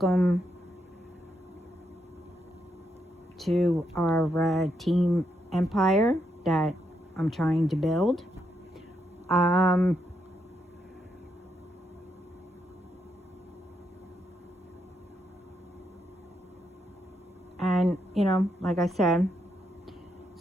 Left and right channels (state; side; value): normal; both; correlation 0.80